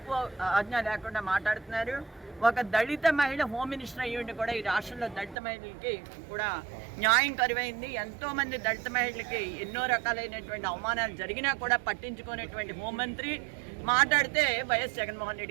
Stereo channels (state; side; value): drops out; left; at 5.4 s